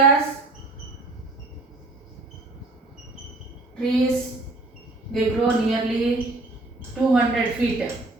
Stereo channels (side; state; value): left; quieter; 3.0 dB